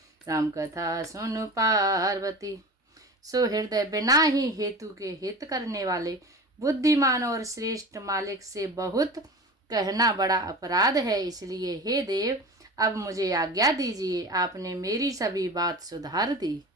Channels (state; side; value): normal; both; correlation 0.33